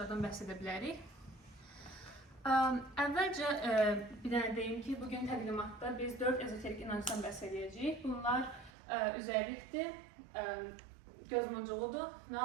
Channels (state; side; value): drops out; left; at 8.7 s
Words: bəhs edə bilərik. Əvvəlcə bir dənə deyim ki, bugün təqdimatda biz 4 ezoterik inancdan bəhs edəcəyik. Bunlar üzərlikdir, gözmuncuğudur,